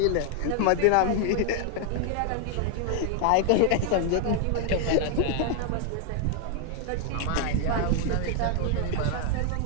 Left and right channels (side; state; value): both; different; correlation 0.00